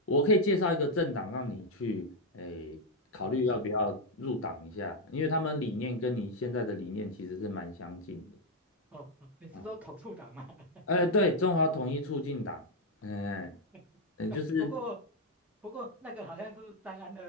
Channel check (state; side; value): normal; both; correlation 0.02